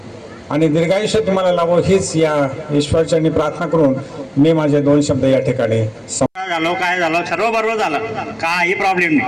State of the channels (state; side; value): identical; both; correlation 1.00